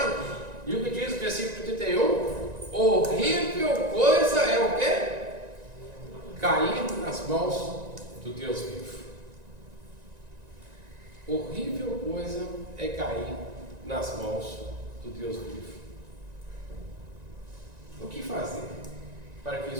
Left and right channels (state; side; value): late; left; 1.9 ms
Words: E o que diz o versículo 31? Horrível coisa é o quê? Cair nas mãos do Deus vivo. Horrível coisa é cair nas mãos do Deus vivo. O que fazer para que